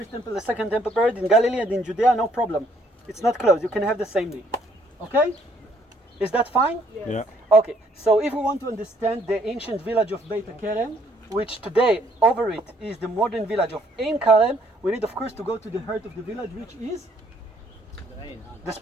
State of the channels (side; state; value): both; normal; correlation 0.66